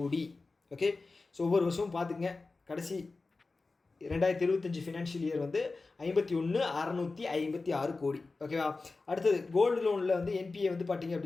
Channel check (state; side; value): quieter; right; 3.7 dB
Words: ஓகே, ஸோ ஒவ்வொரு வருஷமும் பார்த்துங்க, கடைசி 2025 ஃபினான்ஷியல் இயர் வந்து 51,656 கோடி. ஓகேவா? அடுத்தது கோல்டு லோனில் வந்து என்பிஏ வந்து பார்த்திங்க